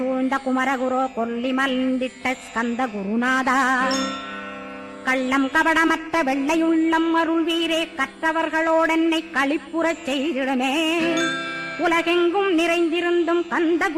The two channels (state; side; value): identical; both; correlation 1.00